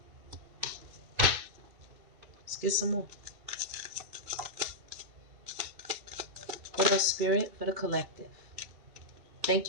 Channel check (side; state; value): left; late; 2.6 ms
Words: Let's get some more. What else, Spirit? For the collective. Thank